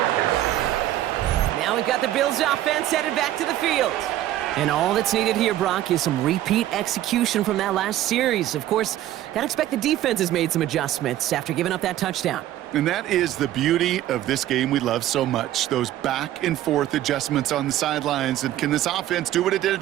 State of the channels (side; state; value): left; quieter; 13.4 dB